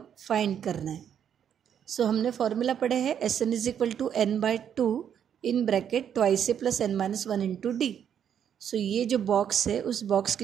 फाइंड करना है. सो हमने फॉर्मूला पढ़े हैं Sn is equal to n/2 in bracket twice से plus n minus 1 into D. So ये जो बॉक्स है उस बॉक्स की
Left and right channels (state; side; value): quieter; left; 8.8 dB